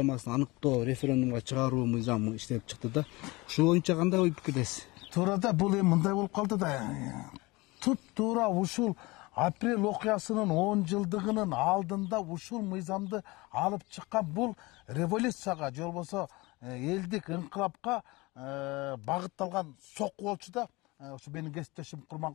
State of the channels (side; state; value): right; quieter; 23.2 dB